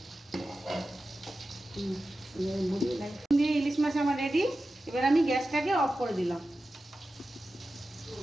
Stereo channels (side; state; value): both; normal; correlation 0.93